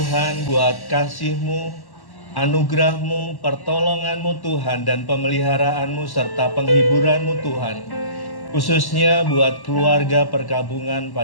buat kasih-Mu, anugerah-Mu, pertolongan-Mu Tuhan, dan pemeliharaanmu serta penghiburan-Mu Tuhan. Khususnya buat keluarga perkabungan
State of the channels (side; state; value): right; late; 1.1 ms